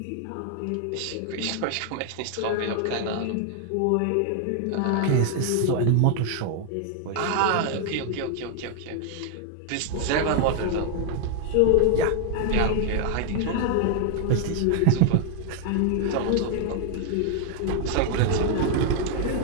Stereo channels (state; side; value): different; both; correlation 0.00